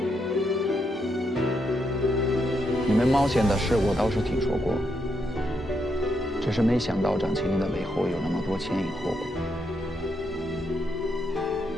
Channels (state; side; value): normal; both; correlation 0.80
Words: 你们冒险的事我倒是听说过，只是没想到张青云的背后有那么多前因后果。